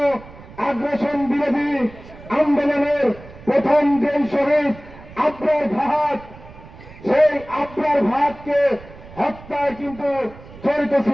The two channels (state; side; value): noise; right; rumble, 19 dB below the sound